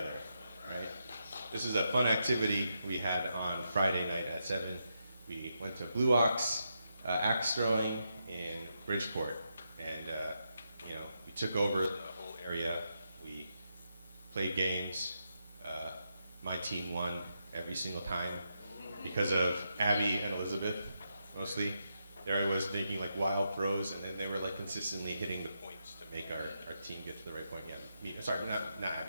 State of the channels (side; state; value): both; inverted; correlation -0.83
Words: right? This is a fun activity we had on Friday night at 7. We went to Blue Ox axe throwing in Bridgeport, and you know, we took over the whole area. We played games. My team won every single time because of Abby and Elizabeth, mostly. there I was making like wild throws, and then they were like consistently hitting the points to make our team get to the right point. Yeah, Mimi, sorry, not